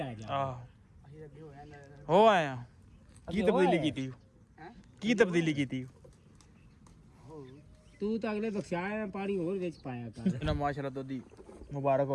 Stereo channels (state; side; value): identical; both; correlation 1.00